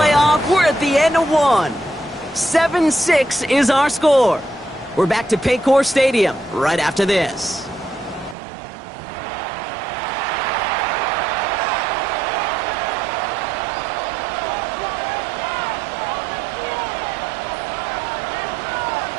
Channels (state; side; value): drops out; left; at 8.3 s